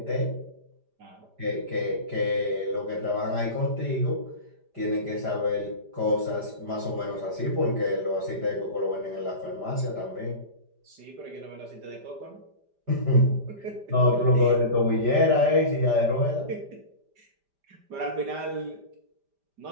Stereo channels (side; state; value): left; late; 5.1 ms